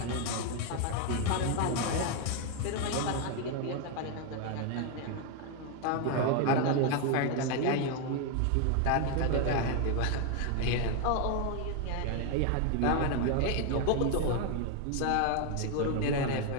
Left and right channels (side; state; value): both; different; correlation 0.01